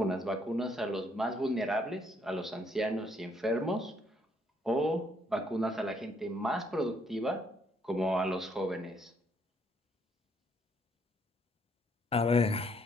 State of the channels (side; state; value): both; normal; correlation 0.70